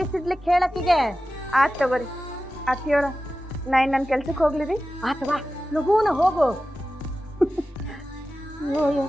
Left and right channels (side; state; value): both; normal; correlation 0.94